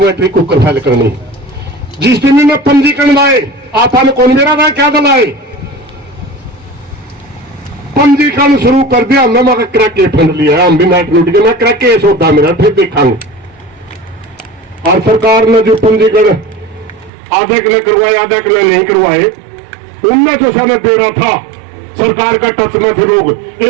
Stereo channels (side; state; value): left; drops out; at 17.1 s